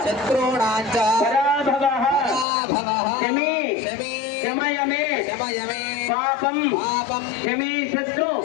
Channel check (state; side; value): drops out; right; at 2.5 s